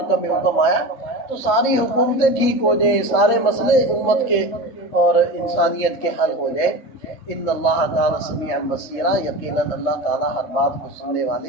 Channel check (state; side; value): late; right; 3.3 ms